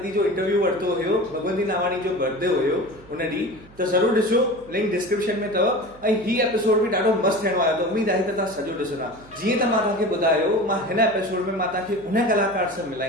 जो इंटरव्यू वरितो हुयो, भगवंती नावाणी जो बर्थडे हुयो उन ॾींहुं, त ज़रूरु ॾिसो, लिंक डिस्क्रिप्शन में अथव। ऐं हीउ एपिसोड बि ॾाढो मस्तु थियणो आहे, त उम्मीद आहे त तव्हां सॼो ॾिसंदा। जीअं त मां तव्हांखे ॿुधायो, मां हिन एपिसोड में मां तव्हांखे उन कलाकार सां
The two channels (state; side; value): noise; right; hum, 24 dB below the sound